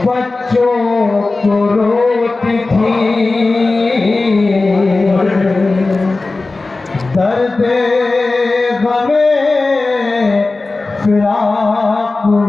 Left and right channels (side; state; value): right; quieter; 3.4 dB